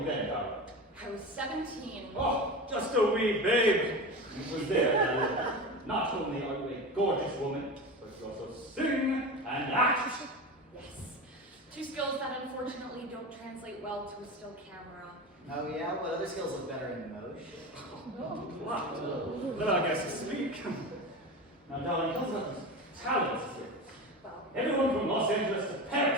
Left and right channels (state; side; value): normal; both; correlation 0.27